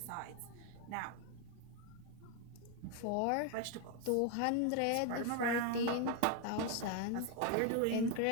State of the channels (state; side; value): different; both; correlation 0.01